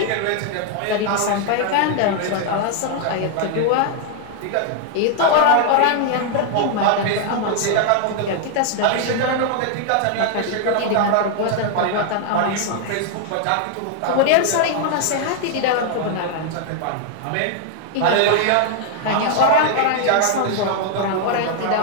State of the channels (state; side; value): different; both; correlation 0.00